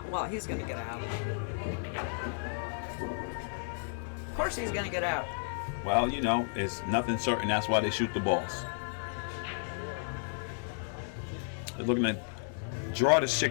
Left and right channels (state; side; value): silent; right; digital silence